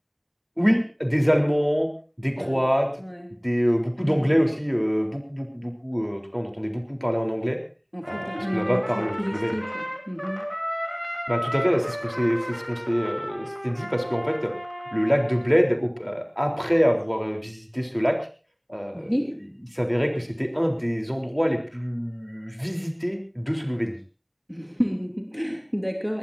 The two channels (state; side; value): identical; both; correlation 1.00